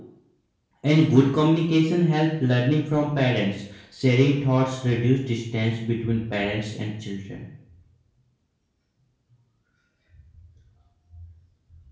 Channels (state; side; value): identical; both; correlation 1.00